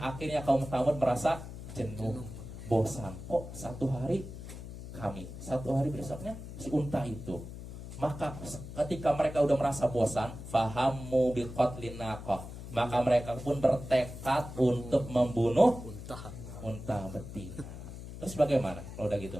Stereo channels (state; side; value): noise; left; hum, 11 dB below the sound